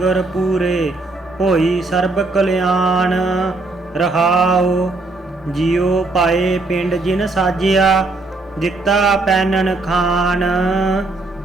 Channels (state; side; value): quieter; left; 3.2 dB